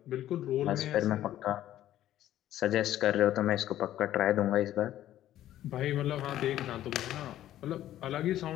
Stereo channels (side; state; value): right; quieter; 12.9 dB